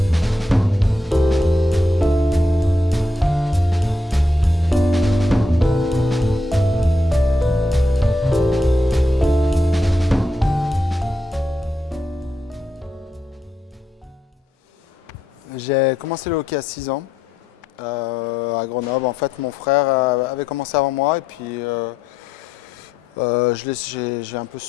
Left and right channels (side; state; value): both; normal; correlation 0.80